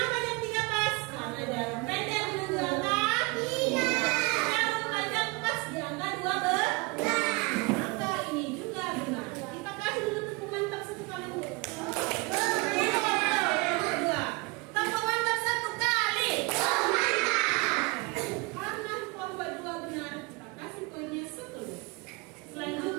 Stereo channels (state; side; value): quieter; left; 27.4 dB